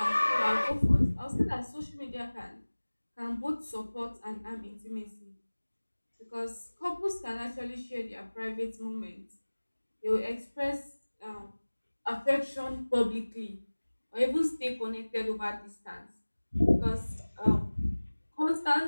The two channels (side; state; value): both; inverted; correlation -1.00